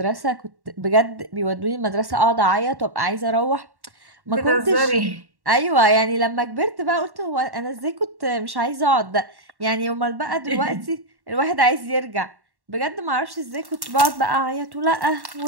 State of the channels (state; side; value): late; left; 1.1 ms